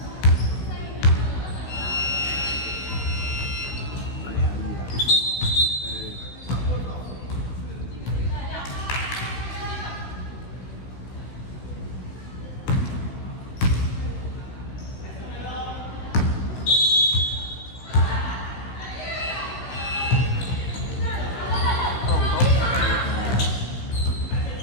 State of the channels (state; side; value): late; right; 16 ms